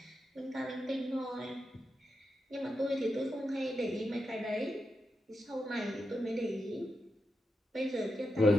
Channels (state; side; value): normal; both; correlation 0.87